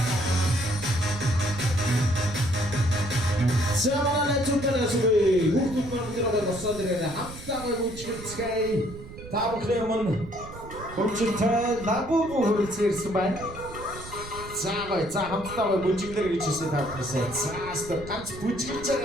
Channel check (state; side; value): noise; right; rumble, 14 dB below the sound